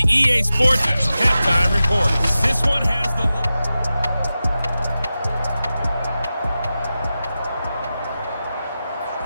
EA Sports Halftime Report. This one has the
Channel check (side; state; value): both; inverted; correlation -0.93